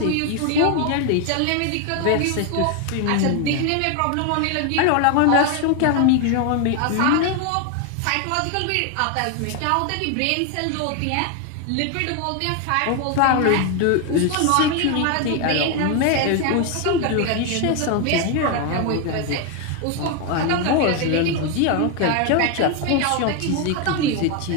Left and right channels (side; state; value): both; different; correlation 0.01